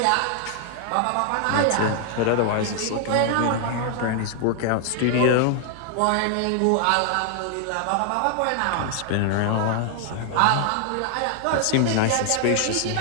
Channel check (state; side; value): different; both; correlation 0.00